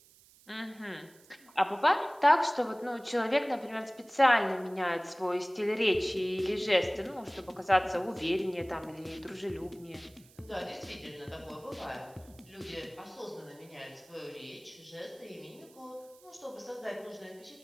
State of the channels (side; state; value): right; noise; hiss, 26 dB below the sound